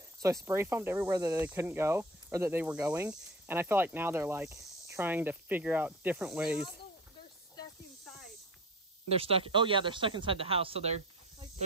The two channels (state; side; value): normal; both; correlation 0.36